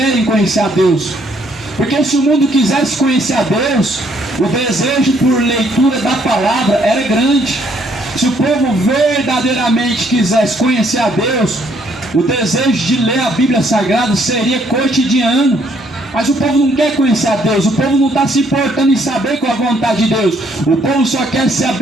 conhecer a Deus. Porque se o mundo quisesse conhecer a Deus, o desejo por leitura da palavra era grande. Se o povo verdadeiramente quisesse conhecer a Deus, o desejo de ler a Bíblia Sagrada seria cotidiano. Mas o povo não quer conhecer a Deus, o povo não está se importando em saber qual é a vontade de Deus. O povo só quer ser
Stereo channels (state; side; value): normal; both; correlation 0.68